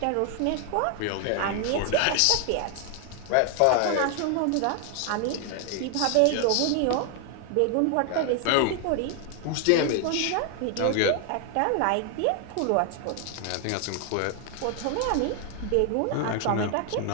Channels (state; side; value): different; both; correlation 0.00